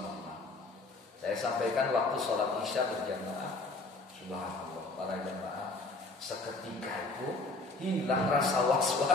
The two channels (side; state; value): right; quieter; 3.3 dB